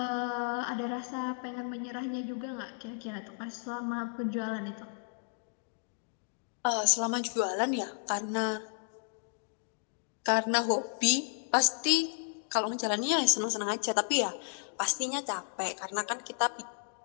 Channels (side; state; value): right; silent; 56 dB below the other